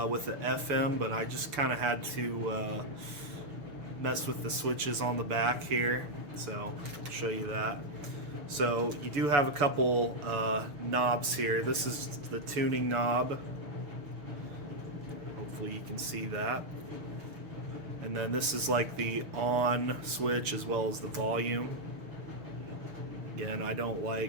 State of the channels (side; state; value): left; late; 6.9 ms